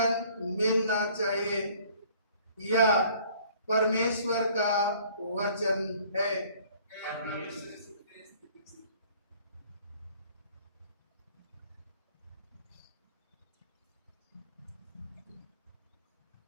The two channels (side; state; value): both; inverted; correlation -0.55